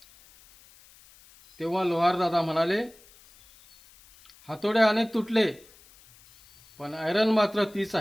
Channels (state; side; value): noise; left; hiss, 26 dB below the sound